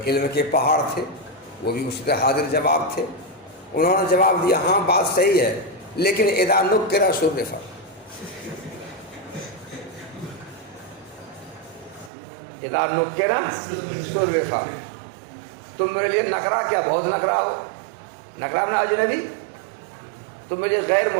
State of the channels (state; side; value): drops out; left; at 12.1 s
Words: علم کے پہاڑ تھے. وہ بھی اسی طرح حاضر جواب تھے. انہوں نے جواب دیا ہاں بات صحیح ہے، لیکن اذا نکر شرف. اذا نکر شرف. تم میرے لیے نکرا کیا، بہت نکرا ہو. نکرا میں اجنبی، تم میرے غیر